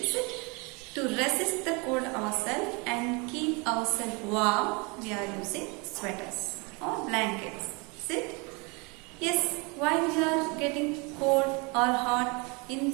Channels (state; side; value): quieter; left; 29.7 dB